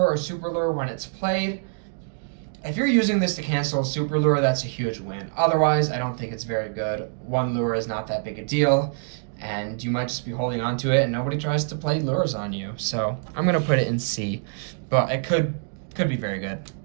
or super lure when it's played. If you're using this to cancel a super lure, that's a huge win. Otherwise, I don't think it's very good. 1 lure is not that big a deal, and you might just be holding on to it, and nobody tries to play lures on you. So I'm going to put it in C, but it could be very good.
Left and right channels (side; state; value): left; silent; digital silence